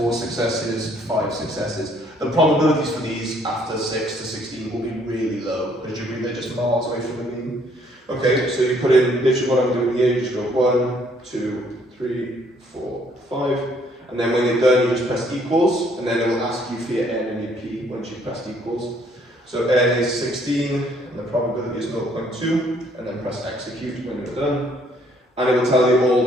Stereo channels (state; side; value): normal; both; correlation 0.65